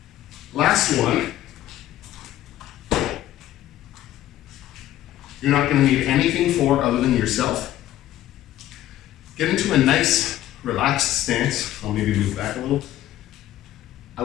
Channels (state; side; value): quieter; right; 13.5 dB